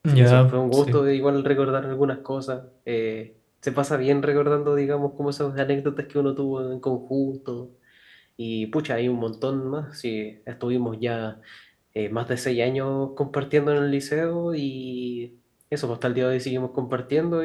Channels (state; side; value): identical; both; correlation 1.00